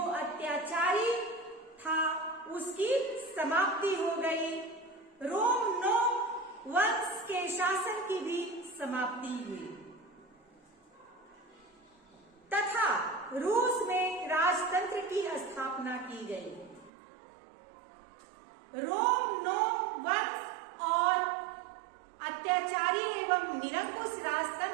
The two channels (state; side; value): drops out; left; at 16.9 s